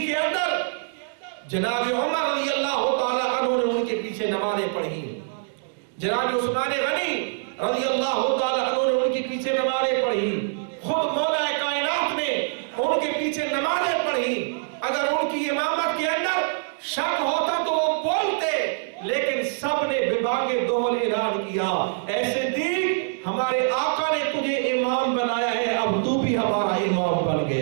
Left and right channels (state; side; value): silent; left; digital silence